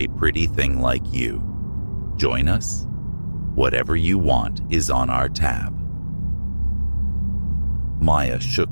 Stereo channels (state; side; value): inverted; both; correlation -1.00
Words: pretty thing like you. Join us? Whatever you want is on our tab." Maya